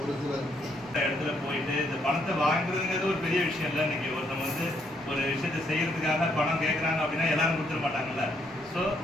சிலர் இடத்துல போயிட்டு இந்த பணத்தை வாங்குறதுங்கிறது ஒரு பெரிய விஷயம் இல்லை. இன்னைக்கு ஒருத்தவங்க வந்து ஒரு விஷயத்தை செய்யறதுக்காக பணம் கேட்குறாங்க அப்படின்னா எல்லாரும் கொடுத்துட மாட்டாங்கல்ல. ஸோ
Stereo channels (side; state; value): both; normal; correlation 0.72